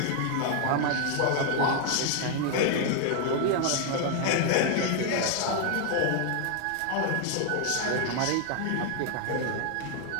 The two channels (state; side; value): different; both; correlation 0.00